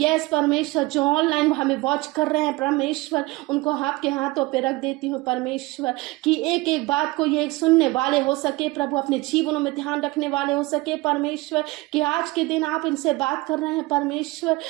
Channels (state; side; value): quieter; left; 21.8 dB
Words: परमेश्वर, जो ऑनलाइन हमें वॉच कर रहे हैं परमेश्वर, उनको आपके हाथों पे रख देती हूँ परमेश्वर, कि एक एक बात को ये सुनने वाले हो सके प्रभु, अपने जीवनों में ध्यान रखने वाले हो सके परमेश्वर, कि आज के दिन आप इनसे बात कर रहे हैं परमेश्वर,